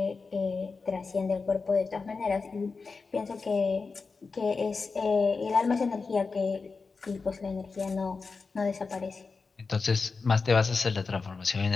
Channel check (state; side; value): quieter; right; 4.5 dB